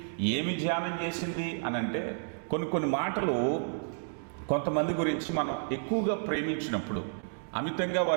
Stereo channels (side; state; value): left; silent; digital silence